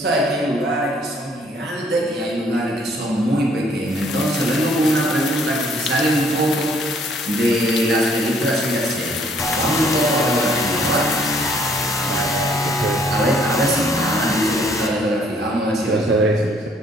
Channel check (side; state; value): both; normal; correlation 0.63